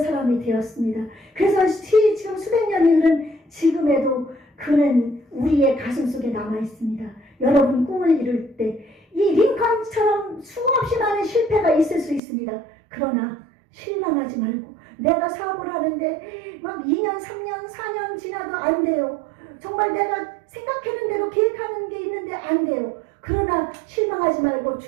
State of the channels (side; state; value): left; drops out; at 12.2 s